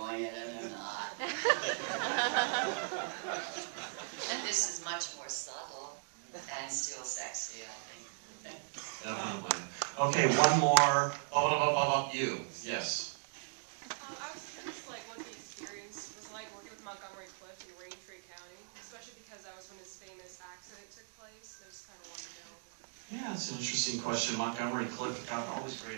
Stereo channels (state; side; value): silent; left; digital silence